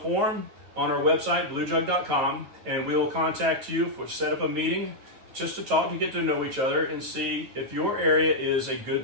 on our website, bluejug.com, and we will contact you for set up a meeting just to talk and get to know each other and see if your area is a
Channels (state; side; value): late; left; 9.2 ms